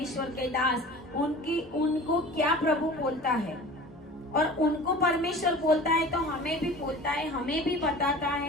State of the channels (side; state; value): both; normal; correlation 0.40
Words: के दास, उनको क्या प्रभु बोलता है, और उनको परमेश्वर बोलता है तो हमें भी बोलता है, हमें भी बताता